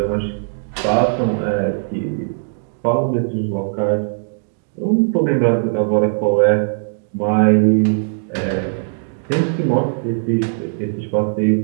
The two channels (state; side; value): silent; left; digital silence